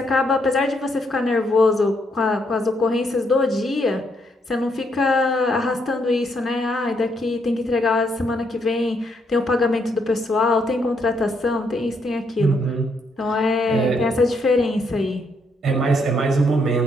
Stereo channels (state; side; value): normal; both; correlation 0.74